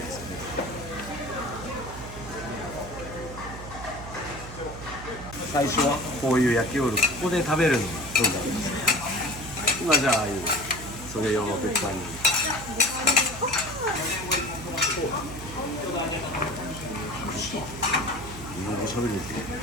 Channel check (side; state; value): right; noise; hum, 12 dB below the sound